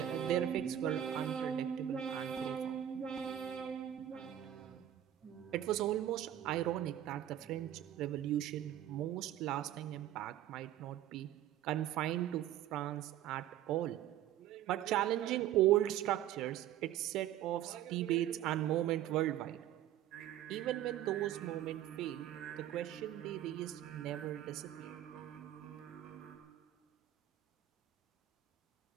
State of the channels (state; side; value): quieter; left; 11.9 dB